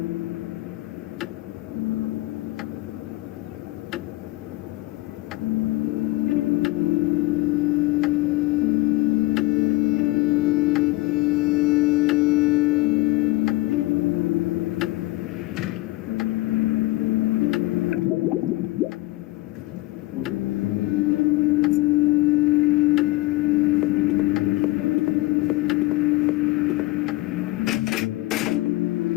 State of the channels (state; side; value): quieter; right; 19.6 dB